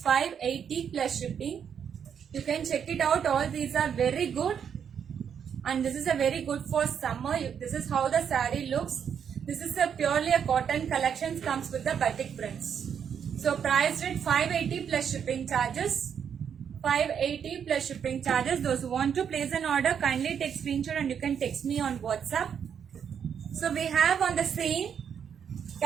plus shipping. You can check it out. All these are very good, and this is a very good for summer. This is how the saree looks. This is a purely a cotton collection, comes with the batik prints. So priced at 580 plus shipping charges. 580 plus shipping charges. Those who want to place an order, kindly take screenshot and you can text me on WhatsApp. So we have on the same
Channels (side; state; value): left; quieter; 7.8 dB